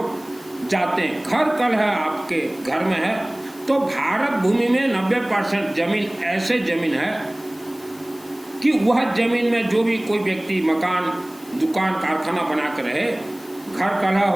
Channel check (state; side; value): noise; left; hiss, 24 dB below the sound